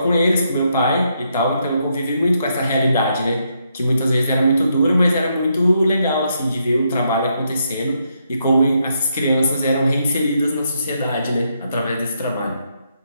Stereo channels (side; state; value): both; inverted; correlation -0.78